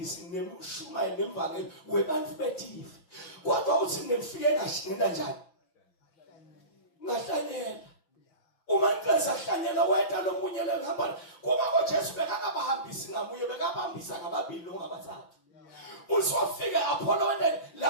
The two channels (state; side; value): late; right; 6.0 ms